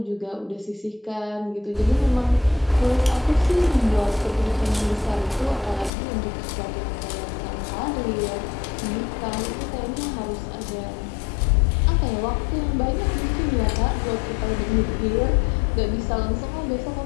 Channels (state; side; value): drops out; right; at 5.9 s